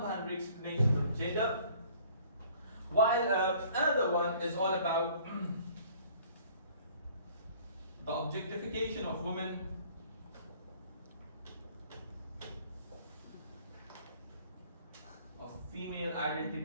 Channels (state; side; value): inverted; both; correlation -0.55